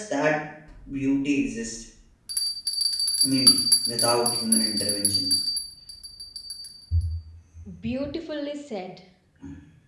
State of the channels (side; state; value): both; identical; correlation 1.00